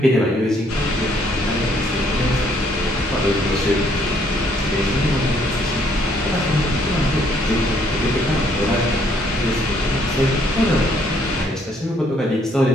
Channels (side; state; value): both; normal; correlation 0.67